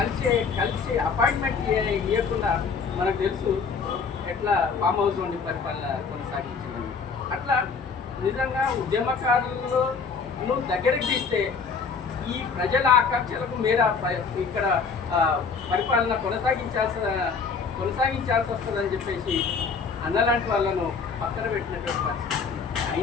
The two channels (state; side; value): quieter; right; 5.3 dB